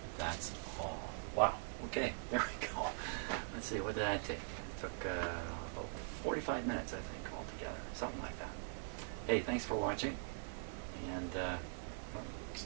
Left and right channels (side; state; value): left; quieter; 39.4 dB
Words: That's all. Wow. Okay, there we go. Let's see, what did I take? It took about 45 minutes, I think, altogether. Something like that. Hey, thanks for watching. And